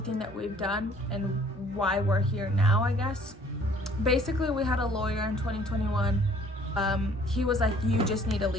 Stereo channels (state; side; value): normal; both; correlation 0.57